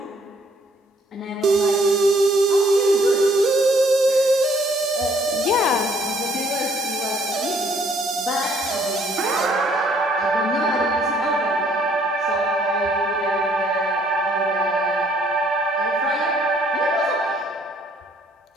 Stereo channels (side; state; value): both; normal; correlation 0.64